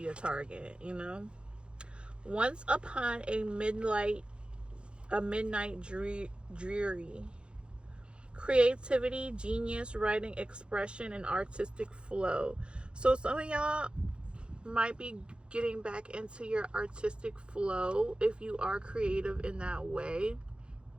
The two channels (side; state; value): left; late; 0.055 ms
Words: a target, you know. Once upon a midnight dreary, creativity, genius, writing, expression, and artistic flow. So some of y'all might be getting back into your artistic flow if you are creative in that way.